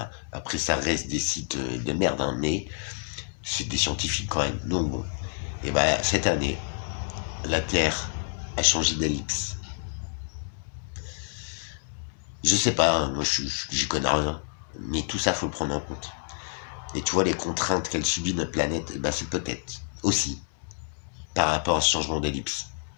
après ça reste des sites de merde, hein, mais c'est des scientifiques quand même. Donc bon, et ben cette année, la Terre a changé d'ellipse. Je sais pas, hein, moi j'y connais rien, mais tout ça faut le prendre en compte. Et tu vois les contraintes qu'elle subit notre planète, et ben c'est peut-être aussi par rapport à ce changement d'ellipse.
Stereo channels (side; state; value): right; silent; 59 dB below the other